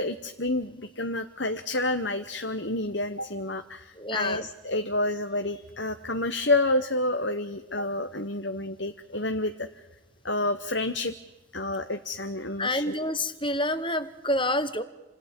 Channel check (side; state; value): both; normal; correlation -0.14